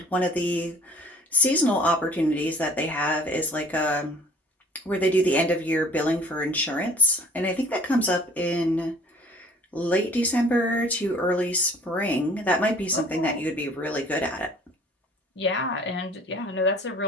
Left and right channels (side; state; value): both; normal; correlation 0.51